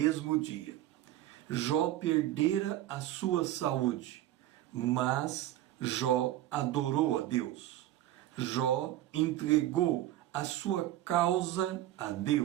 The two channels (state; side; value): quieter; left; 13.8 dB